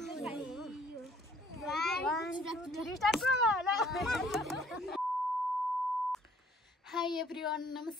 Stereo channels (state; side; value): normal; both; correlation 0.59